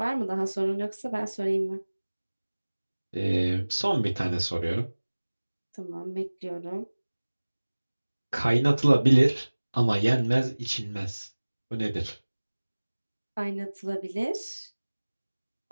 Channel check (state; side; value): inverted; both; correlation -1.00